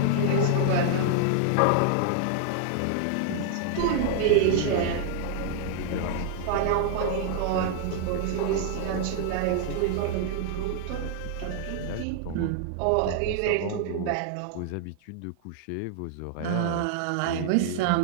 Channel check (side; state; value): both; different; correlation 0.00